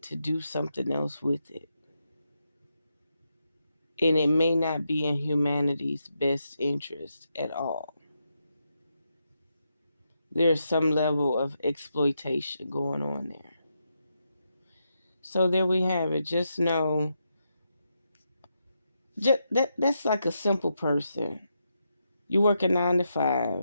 to do something else with it. And it may not be in humanity's best interest at all. There's some level of exploitation going on there. So there we have it. Just know, that's like a simple person. You work a 9 to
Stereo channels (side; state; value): both; inverted; correlation -0.83